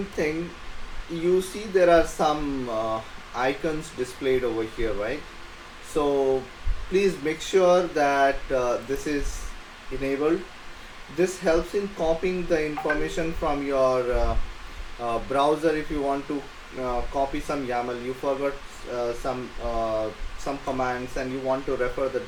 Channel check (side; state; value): both; identical; correlation 1.00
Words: thing, you see there are some icons displayed over here, right? So please make sure that this is enabled. This helps in copying the information from your browser. If you want to copy some YAML, you forgot some commands and you want to refer the